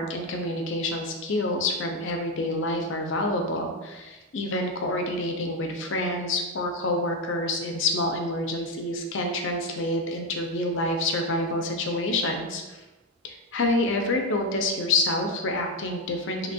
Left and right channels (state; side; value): normal; both; correlation 0.08